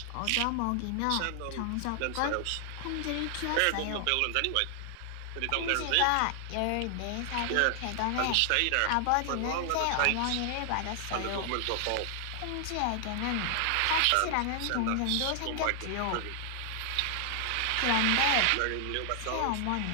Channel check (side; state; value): both; different; correlation 0.00